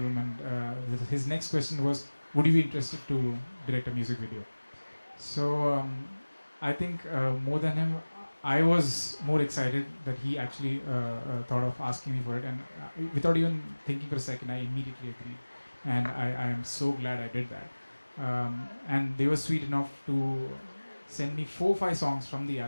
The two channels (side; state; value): both; inverted; correlation -1.00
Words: And his next question was, would you be interested to direct a music video? So I think more than him, I was more excited that he actually thought of asking me for it, and without even thinking for a second, I immediately agreed, and I am so glad I did that. And they were sweet enough to send me 4-5 songs from the